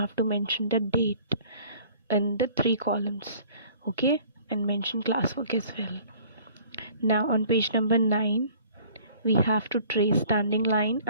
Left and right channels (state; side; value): inverted; both; correlation -0.52